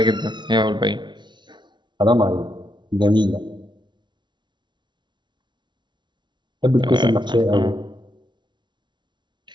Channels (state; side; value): late; left; 0.22 ms